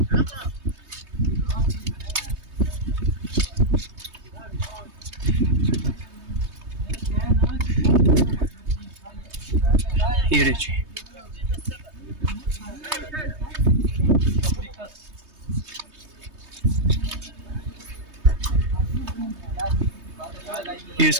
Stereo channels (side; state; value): left; late; 3.2 ms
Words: ये देखिए, ये